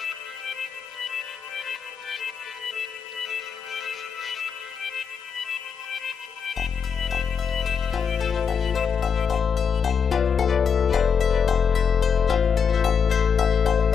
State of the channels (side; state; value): right; quieter; 6.6 dB